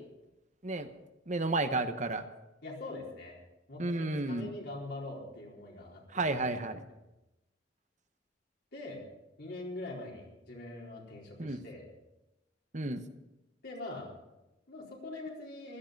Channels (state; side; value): normal; both; correlation 0.23